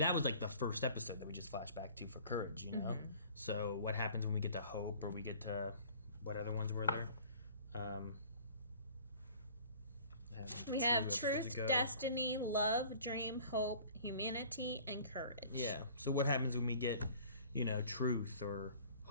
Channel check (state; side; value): inverted; both; correlation -0.49